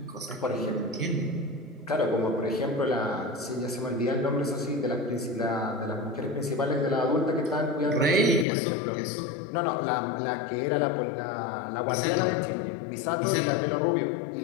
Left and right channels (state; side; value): drops out; right; at 8.5 s